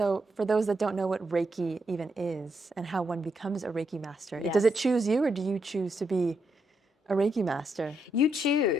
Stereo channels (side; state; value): both; normal; correlation 0.80